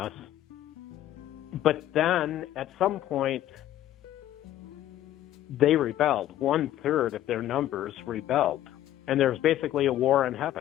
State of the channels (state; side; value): quieter; right; 12.9 dB